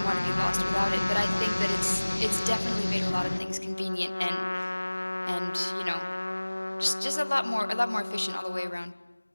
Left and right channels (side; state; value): both; inverted; correlation -1.00